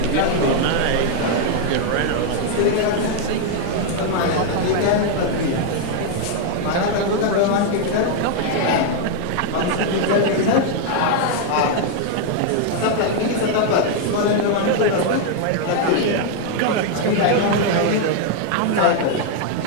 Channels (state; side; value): different; both; correlation 0.00